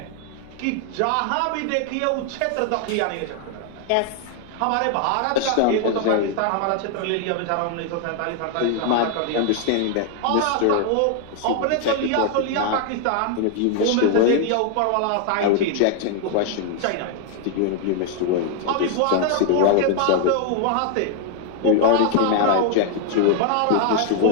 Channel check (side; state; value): both; different; correlation 0.00